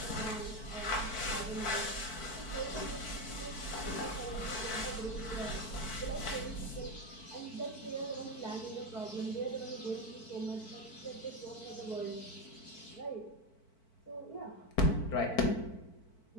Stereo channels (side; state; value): right; late; 4.5 ms